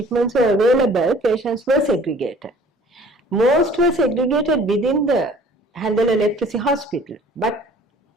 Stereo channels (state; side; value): normal; both; correlation 0.51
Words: were available, patients were segregated. Most were segregated within the Handala Leprosy Hospital, but